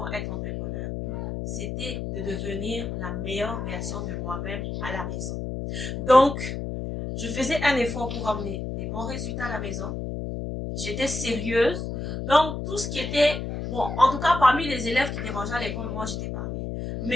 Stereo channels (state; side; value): noise; left; hum, 4 dB below the sound